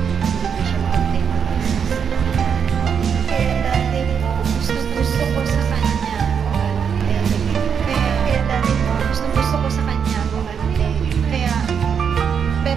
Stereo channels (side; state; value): left; quieter; 7.0 dB